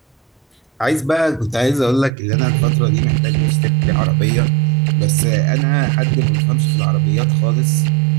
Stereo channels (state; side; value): drops out; left; at 2.1 s